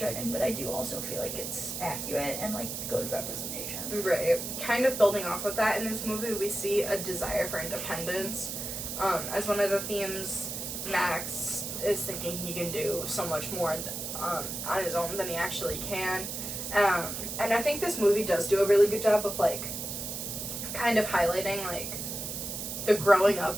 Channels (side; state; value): right; noise; hiss, 5 dB below the sound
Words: but I do also feel like it's accurate and like good representation. Right. Kind of building off of that, in this movie, we see a desire for independence. As one of the themes, Max is thinking he can do so much more on his own than he actually can. And I think this movie does do a really good job of, like, kind of highlighting, like, the growing